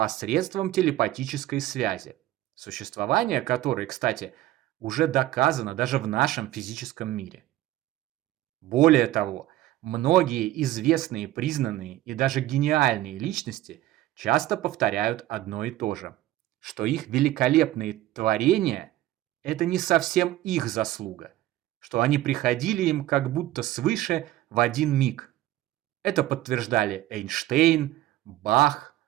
телепатической связи, существование которой, кстати, уже доказано даже в нашем физическом мире. Более того, многие известные, признанные и даже гениальные личности часто повторяют одно и то же, что их великолепные творения – это не совсем их заслуга, что они приходили им как будто свыше в один миг. Это подтверждали Эйнштейн, Бах,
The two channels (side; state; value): left; quieter; 15.0 dB